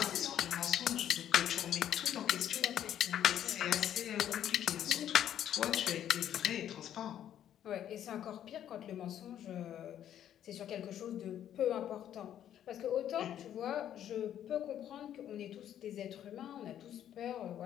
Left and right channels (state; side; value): quieter; right; 10.6 dB